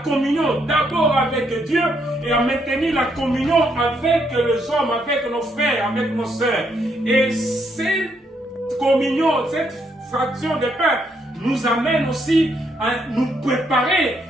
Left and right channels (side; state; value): both; normal; correlation 0.74